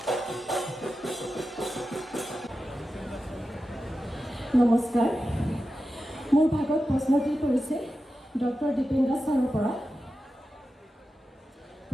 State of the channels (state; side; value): normal; both; correlation 0.92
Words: নমস্কাৰ মোৰ ভাগত প্ৰশ্নটি কৰিছে ডক্টৰ দীপেন দাস ছাৰৰ পৰা